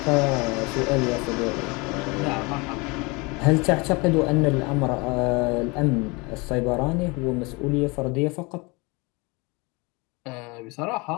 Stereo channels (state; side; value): quieter; right; 27.1 dB